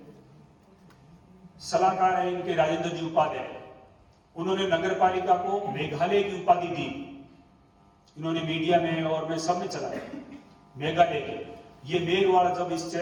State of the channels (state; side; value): identical; both; correlation 1.00